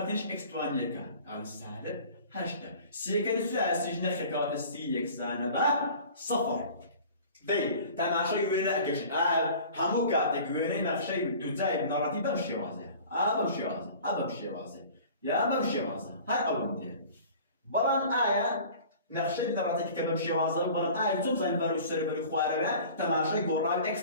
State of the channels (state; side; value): inverted; both; correlation -0.44